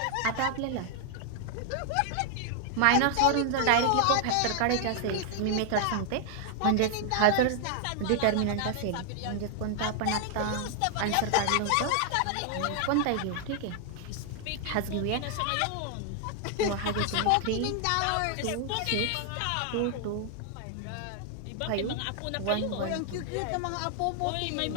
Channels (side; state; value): both; different; correlation 0.00